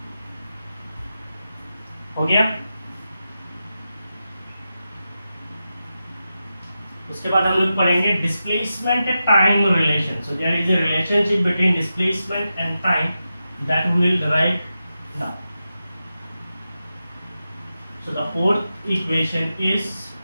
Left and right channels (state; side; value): inverted; both; correlation -0.91